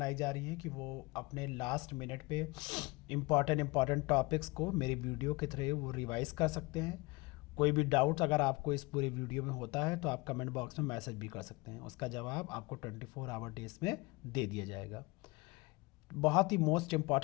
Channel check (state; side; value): quieter; right; 24.5 dB